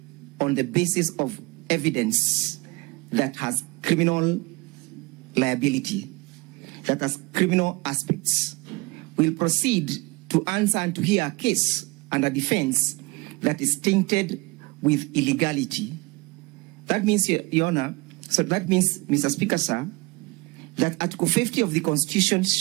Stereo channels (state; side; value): quieter; left; 25.5 dB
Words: on the basis of evidence that has criminal liability, that has criminal aspects. We'll proceed to answer and to hear a case and a defense that is tainted with illegality. That means, Your Honor, so that means, Mr. Speaker, sir, that Article 50 of the Constitution